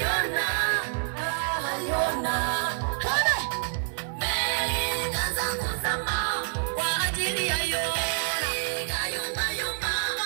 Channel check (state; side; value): silent; left; digital silence